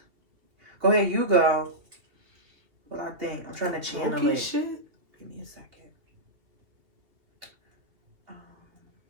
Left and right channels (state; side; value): late; left; 2.8 ms